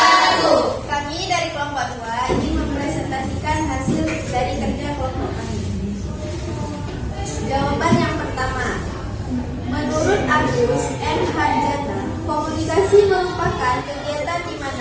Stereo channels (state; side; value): identical; both; correlation 1.00